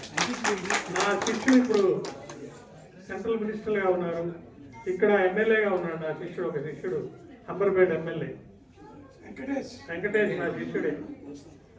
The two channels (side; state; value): both; identical; correlation 1.00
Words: నా శిష్యుడు ఇప్పుడు సెంట్రల్ మినిస్టర్గా ఉన్నారు, ఇక్కడ ఎమ్మెల్యేగా ఉన్నాడు. నా శిష్యుడు ఒక శిష్యుడు అంబర్పేట ఎమ్మెల్యే వెంకటేష్ నా శిష్యుడే.